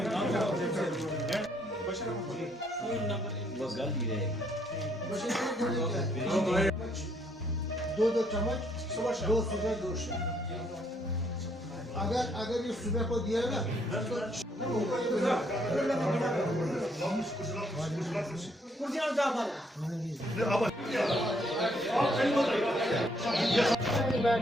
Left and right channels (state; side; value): normal; both; correlation 0.69